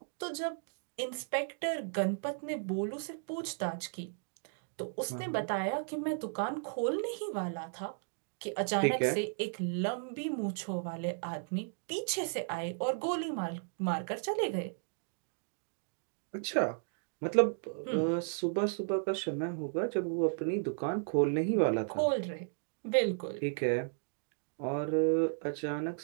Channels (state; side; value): silent; left; digital silence